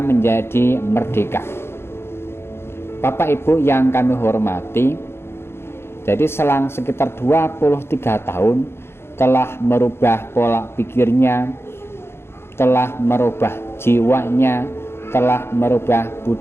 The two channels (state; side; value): late; right; 0.12 ms